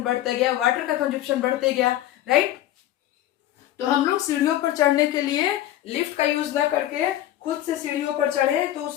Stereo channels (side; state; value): right; quieter; 13.3 dB